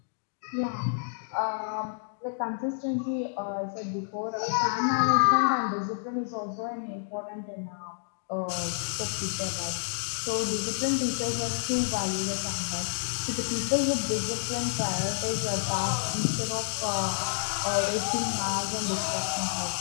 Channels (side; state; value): right; silent; digital silence